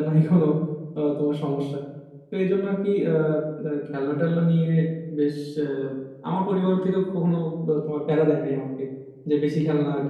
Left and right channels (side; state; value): both; identical; correlation 1.00